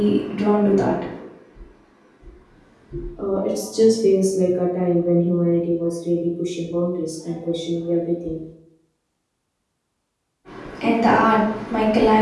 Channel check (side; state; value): both; identical; correlation 1.00